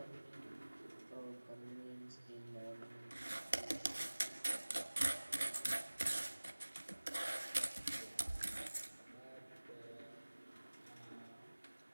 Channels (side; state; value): both; inverted; correlation -1.00